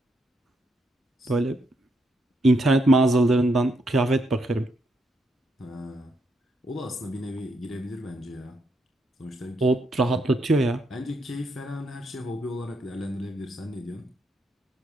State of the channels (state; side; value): normal; both; correlation 0.78